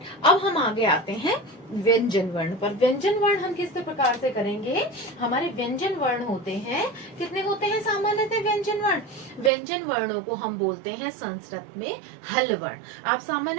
अब हम आगे आते हैं व्यंजन वर्ण पर। व्यंजन वर्ण हम किस प्रकार से करेंगे? हमारे व्यंजन वर्ण होते हैं, कितने होते हैं सामान्यतः व्यंजन वर्ण? व्यंजन वर्णों को हम बोलते हैं संस्कृत में हल वर्ण। आप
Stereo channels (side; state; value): left; drops out; at 9.5 s